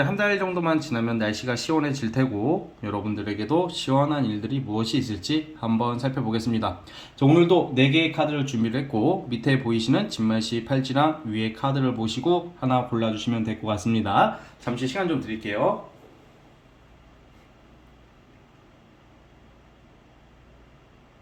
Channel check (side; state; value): both; identical; correlation 1.00